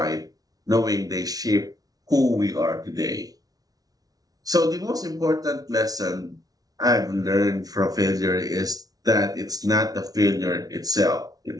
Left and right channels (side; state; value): left; late; 0.18 ms